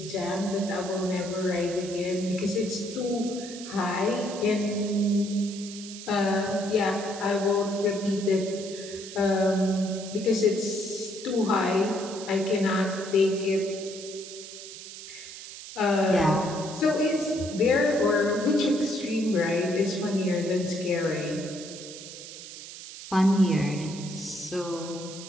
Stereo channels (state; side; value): noise; right; hiss, 13 dB below the sound